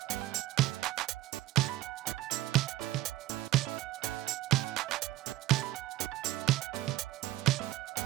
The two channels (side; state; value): left; quieter; 15.5 dB